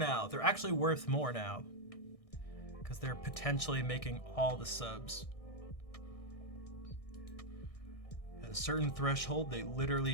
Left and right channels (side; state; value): right; late; 1.6 ms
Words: They're actually worth more now because they're potentially making all the subs. At a certain threshold, they